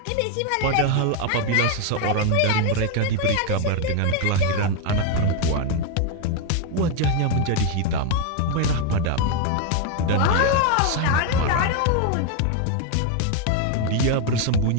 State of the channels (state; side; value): different; both; correlation 0.01